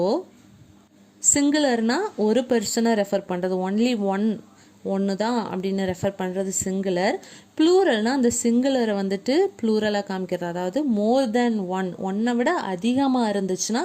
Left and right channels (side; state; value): both; identical; correlation 1.00